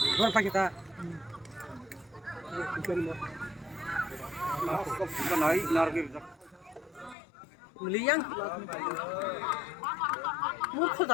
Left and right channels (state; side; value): drops out; right; at 7.2 s